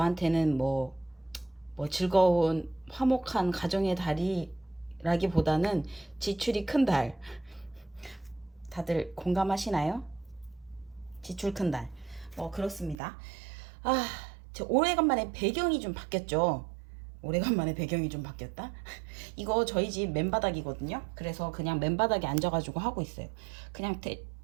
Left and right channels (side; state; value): left; drops out; at 13.0 s